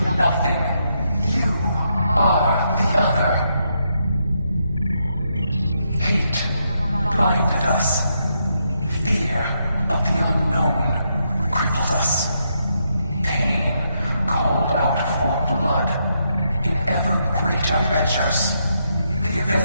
nothing. You are the other. Hate blinded us. Fear of the unknown crippled us. Pain called out for blood in ever greater measures. The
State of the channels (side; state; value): both; inverted; correlation -0.79